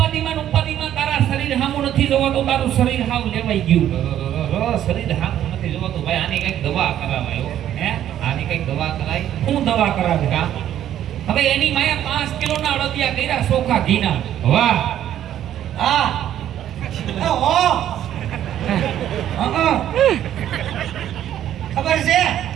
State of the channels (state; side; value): quieter; left; 11.3 dB